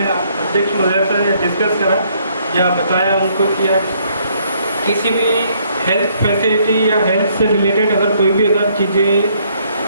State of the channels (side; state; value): both; inverted; correlation -0.67